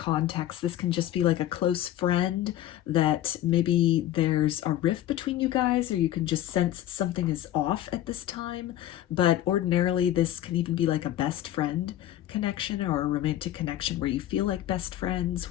this can just be like a close friend that maybe there's a rift between you guys, or you can just sense something is off at this time. But ordinarily this can even be like a best friend connection or a romantic connection where you feel like best friends,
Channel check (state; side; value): quieter; right; 12.8 dB